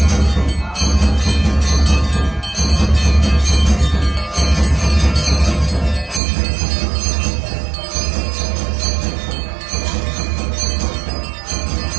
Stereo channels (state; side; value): drops out; left; at 6.2 s